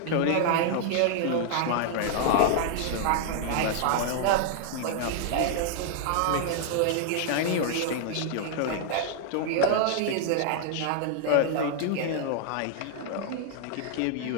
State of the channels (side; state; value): both; different; correlation 0.00